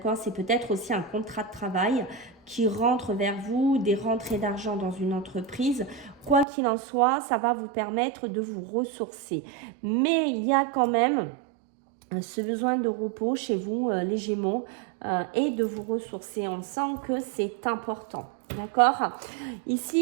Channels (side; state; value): left; drops out; at 6.5 s